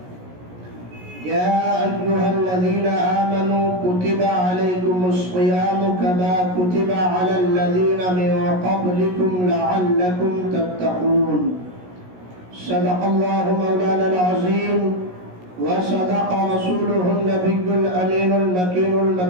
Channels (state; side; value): late; left; 17 ms